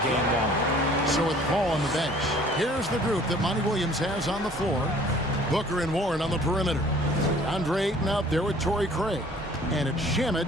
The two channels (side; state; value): both; normal; correlation 0.53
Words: game long. So with Paul on the bench, here's the group that Monty Williams has on the floor. Booker and Warren on the perimeter. Andre Ayton out there with Torrey Craig. And it's Shamet